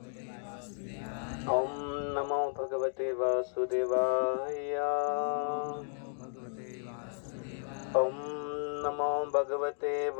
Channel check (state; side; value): silent; right; digital silence